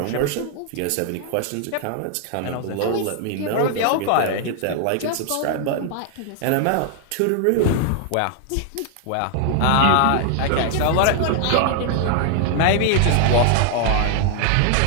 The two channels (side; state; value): both; different; correlation 0.00